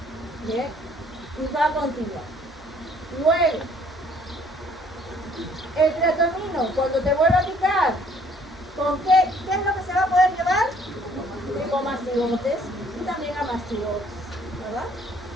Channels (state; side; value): normal; both; correlation 0.60